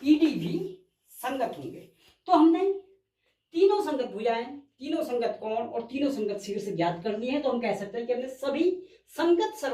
भुजाएं, तीनों संगत कोण और तीनों संगत शीर्ष ज्ञात करनी है, तो हम कह सकते हैं कि हमने सभी संगत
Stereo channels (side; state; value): both; identical; correlation 1.00